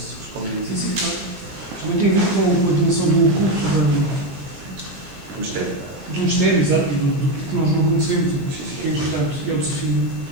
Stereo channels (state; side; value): late; left; 19 ms